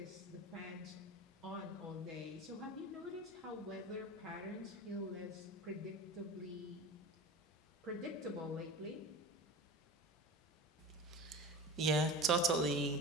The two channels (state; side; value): normal; both; correlation 0.33